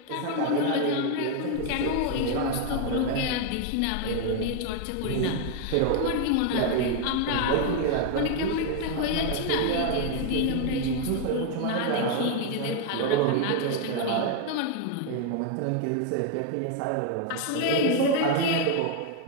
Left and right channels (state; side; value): different; both; correlation 0.00